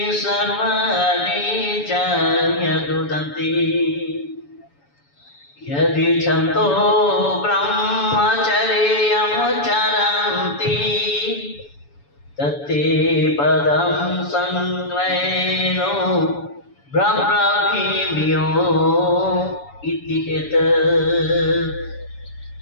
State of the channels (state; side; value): late; right; 7.0 ms